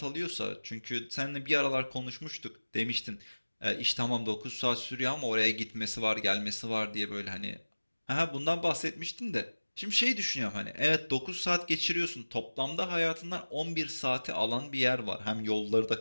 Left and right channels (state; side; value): inverted; both; correlation -1.00